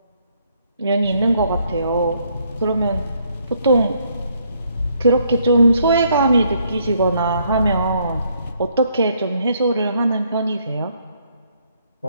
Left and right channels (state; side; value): inverted; both; correlation -0.70